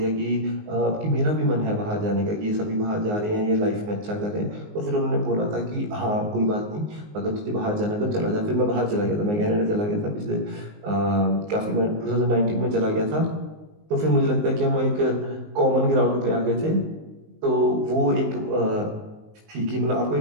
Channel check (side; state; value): left; late; 19 ms